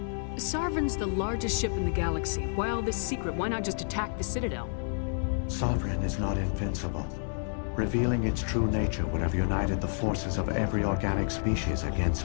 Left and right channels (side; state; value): right; silent; 58 dB below the other